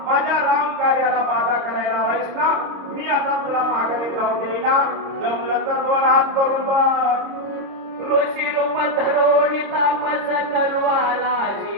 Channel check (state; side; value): late; left; 26 ms